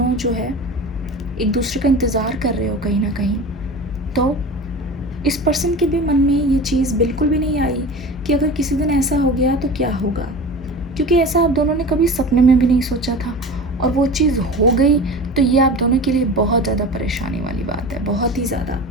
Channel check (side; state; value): both; normal; correlation 0.34